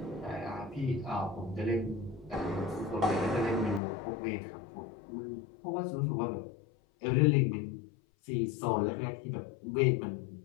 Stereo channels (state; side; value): drops out; right; at 3.8 s